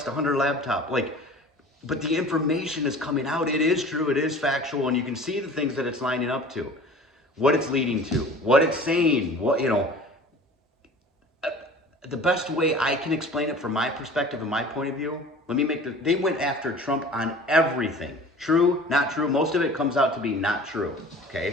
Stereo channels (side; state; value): both; normal; correlation 0.43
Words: the Hunter laptop. But the information is coming out. It is true, it is factual, and you can see the things that it's lining up to, what it's leading to, what it's saying, the best way I can explain it from my perspective and my point of view, they went after Trump on everything. True, not true. Most of it comes out to be not true.